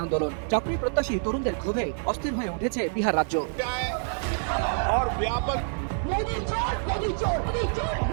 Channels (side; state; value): left; silent; 60 dB below the other